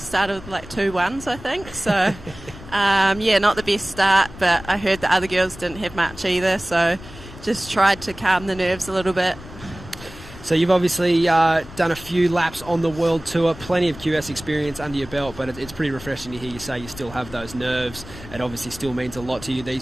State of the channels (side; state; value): left; noise; rumble, 16 dB below the sound